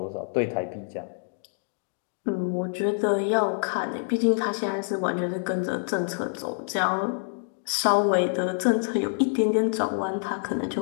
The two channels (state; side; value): silent; right; digital silence